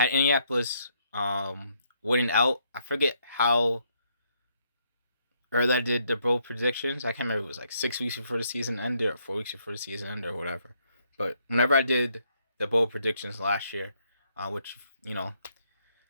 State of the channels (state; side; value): inverted; both; correlation -0.73